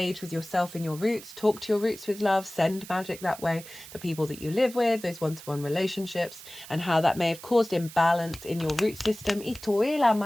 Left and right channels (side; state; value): right; noise; hiss, 16 dB below the sound